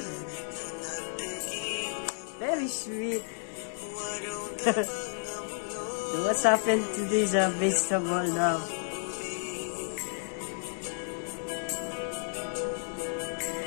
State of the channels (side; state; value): right; silent; digital silence